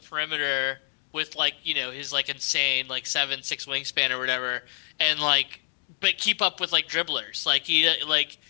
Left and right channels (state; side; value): silent; right; 58 dB below the other